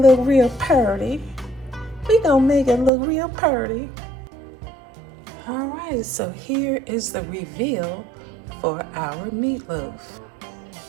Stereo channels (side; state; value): left; drops out; at 2.9 s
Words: real pretty. We're gonna make it look real pretty. All right, so here is the reveal for our meatloaf.